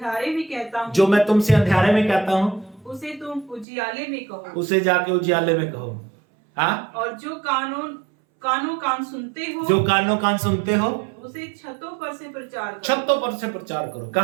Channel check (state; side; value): drops out; left; at 3.7 s